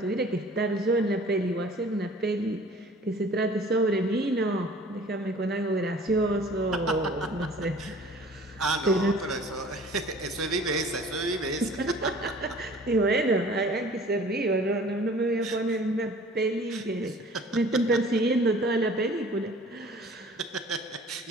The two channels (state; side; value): normal; both; correlation 0.48